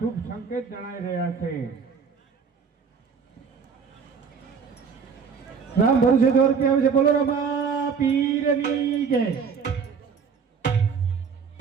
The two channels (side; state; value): left; quieter; 6.1 dB